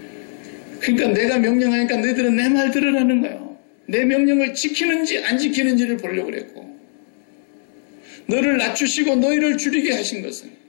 그러니까 내가 명령하니까 너희들은 내 말 들으라는 거예요. 내 명령을 지키는지 안 지키는지를 보려고 그랬고 너를 낮추시고 너희를 줄이게 하신 것은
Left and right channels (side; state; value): right; silent; 58 dB below the other